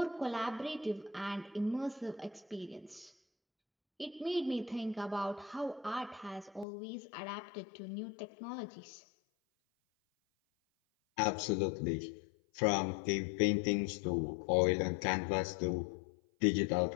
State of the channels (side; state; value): right; drops out; at 6.7 s